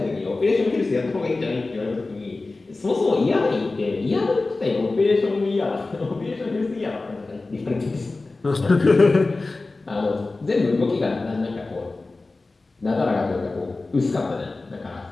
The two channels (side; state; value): right; quieter; 3.4 dB